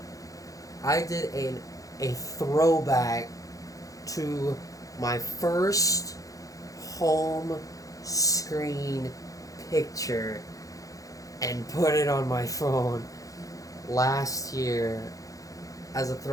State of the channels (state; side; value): late; right; 0.17 ms